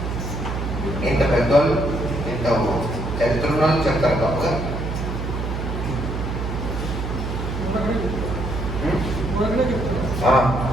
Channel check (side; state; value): right; noise; hum, 4 dB below the sound